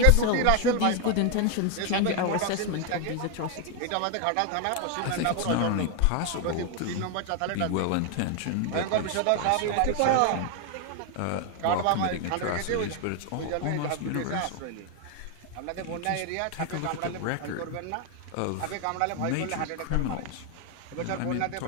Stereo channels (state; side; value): different; both; correlation 0.01